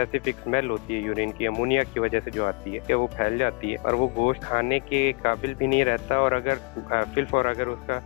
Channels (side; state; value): right; quieter; 30.2 dB